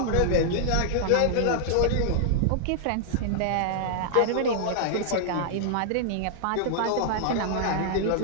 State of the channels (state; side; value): different; both; correlation -0.01